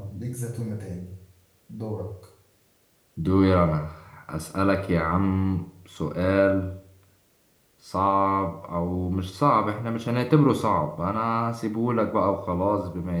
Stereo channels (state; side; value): identical; both; correlation 1.00